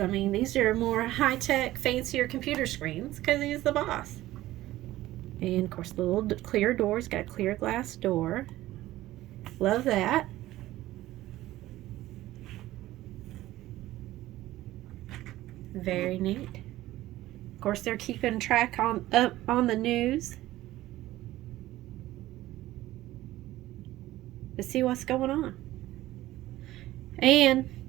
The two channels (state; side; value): quieter; left; 15.8 dB